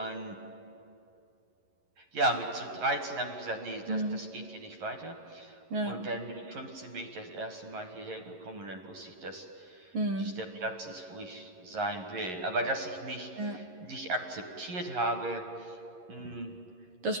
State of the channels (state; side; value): late; left; 11 ms